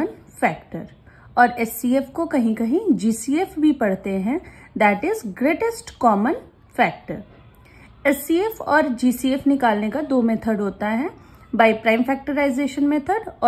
factor. और HCF को कहीं कहीं GCF भी पढ़ते हैं, that is greatest common factor. HCF और GCF निकालने का दो मेथड होता है, by prime factorization method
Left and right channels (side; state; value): both; identical; correlation 1.00